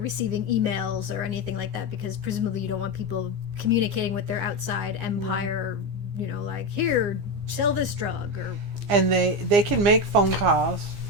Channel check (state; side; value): late; left; 15 ms